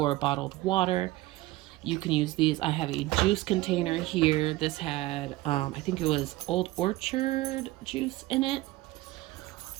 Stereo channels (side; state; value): left; quieter; 18.5 dB